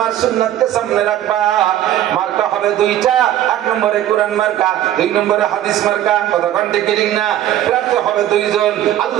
সুন্নাতকে সামনে রাখবা। মার্কা হবে দুইটা, এক নম্বরে কোরআন মার্কা, দুই নম্বরে হাদিস মার্কা। কতক্ষণ ঠিক ঠিক না? প্রার্থী হবে দুইজন,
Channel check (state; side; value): quieter; left; 12.3 dB